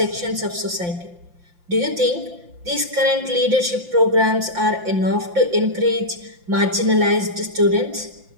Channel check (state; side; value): late; left; 5.7 ms